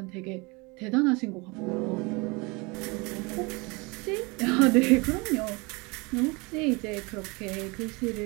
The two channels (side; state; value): left; quieter; 27.2 dB